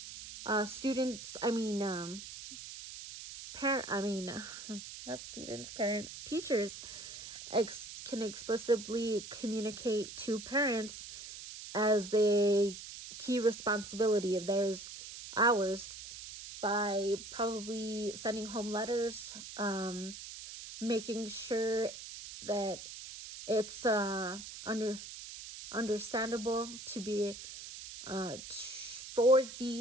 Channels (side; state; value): right; noise; hiss, 11 dB below the sound